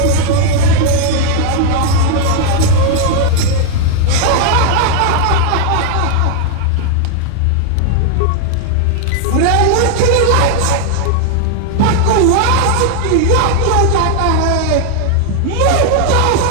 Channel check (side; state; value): both; different; correlation 0.00